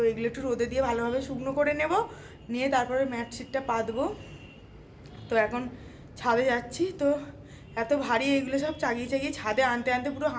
এগুলো একটু রোদে দিয়ে ভালোভাবে শুকনো করে নেব, নিয়ে তারপরে ম্যাট শিটটা পাতবো। তো এখন ছাদে যাচ্ছি, তো এত ভারী এগুলো সব চাগিয়ে চাগিয়ে ছাদে আনতে আনতে পুরো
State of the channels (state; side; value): identical; both; correlation 1.00